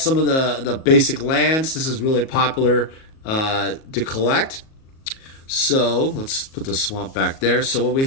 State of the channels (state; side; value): late; right; 37 ms